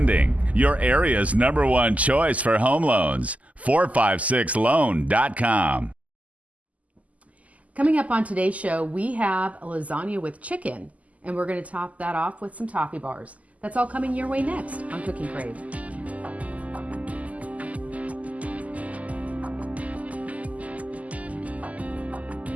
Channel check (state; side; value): late; left; 0.073 ms